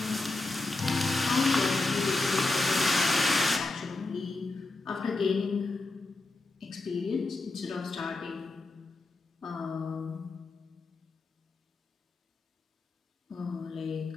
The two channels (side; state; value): right; quieter; 3.2 dB